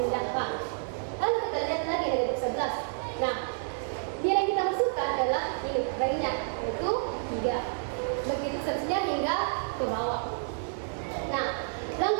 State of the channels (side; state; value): left; silent; digital silence